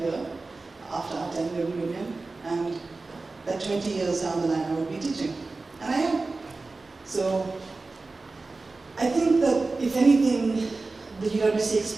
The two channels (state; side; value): quieter; left; 3.6 dB